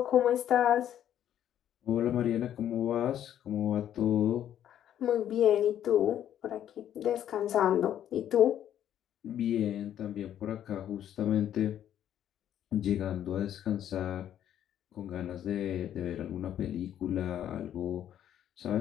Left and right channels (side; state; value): right; quieter; 10.7 dB